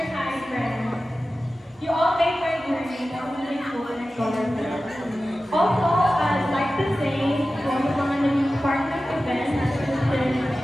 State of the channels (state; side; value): normal; both; correlation 0.95